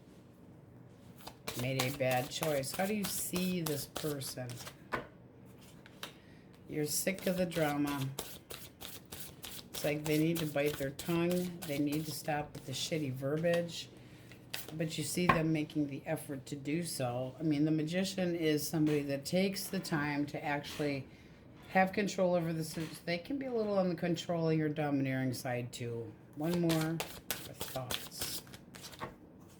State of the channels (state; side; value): identical; both; correlation 1.00